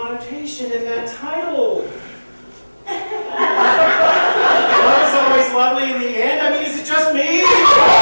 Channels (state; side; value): inverted; both; correlation -1.00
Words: in that title. Love is always lovely in the end? I mean, is it just me?